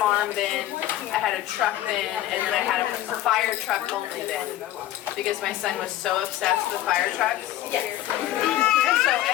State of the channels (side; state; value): right; quieter; 14.0 dB